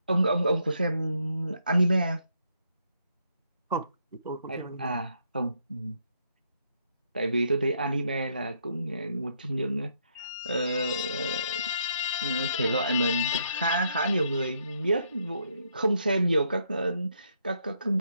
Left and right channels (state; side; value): inverted; both; correlation -0.74